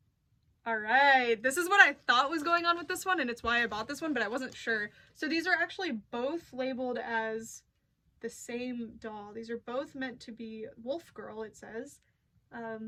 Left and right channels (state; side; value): identical; both; correlation 1.00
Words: Alright, this is what I thought was going on with this one, and it's why I bought this one, but I wasn't sure. So these are actually both labeled as the same doll. These are both meant to be Wolf Girl, it says.